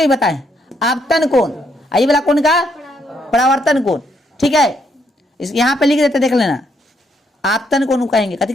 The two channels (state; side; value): normal; both; correlation 0.74